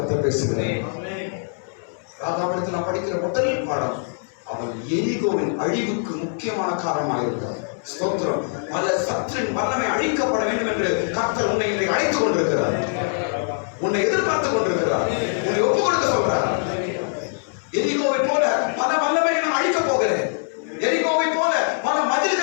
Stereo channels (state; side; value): silent; right; 64 dB below the other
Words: பேசுகிறேன். ராகாவிடத்தில் நான் படிக்கிற முதல் பாடம், அவன் எரிகோவின் அழிவுக்கு முக்கியமான காரணமாக இருக்கிறார். ஸ்தோத்திரம். பல சத்துரின் வல்லமை அழிக்கப்பட வேண்டும் என்று கர்த்தர் உன்னை அழைத்துக் கொண்டிருக்கிறார், உன்னை எதிர்பார்த்துக் கொண்டிருக்கிறார், உன்னை ஒப்புக் கொடுக்க சொல்றார். எரிகோவை போல பல வல்லமையை நான் அழிக்கப் போகிறேன், எரிகோவை போல பல